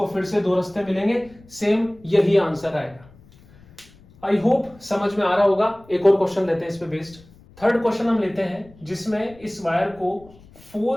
फिर से दो रास्ते मिलेंगे, सेम यही आंसर आएगा। आई होप समझ में आ रहा होगा। एक और क्वेश्चन लेते हैं इस पे बेस्ड। थर्ड क्वेश्चन हम लेते हैं जिसमें इस वायर को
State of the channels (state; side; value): noise; left; rumble, 25 dB below the sound